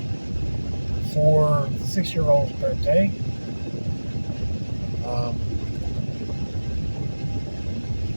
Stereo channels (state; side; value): inverted; both; correlation -1.00